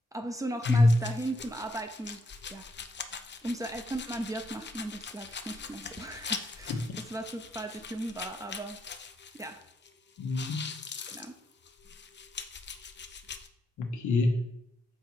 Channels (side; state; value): both; normal; correlation 0.79